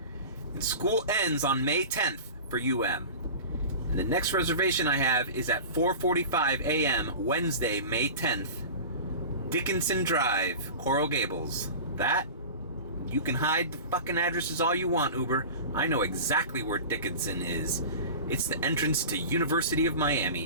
And school ends on May 10th for UM. And the next reservation I have is at 4:45 a.m. Wednesday, May 10th. Dickinson Drive, Coral Gables. That, you can hide the fucking addresses all you want, Uber. I know exactly where Dickinson is. It's the entrance to University of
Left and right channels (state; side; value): inverted; both; correlation -0.34